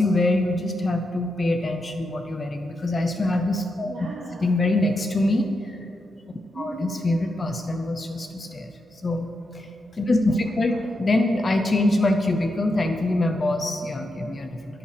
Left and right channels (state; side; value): normal; both; correlation 0.84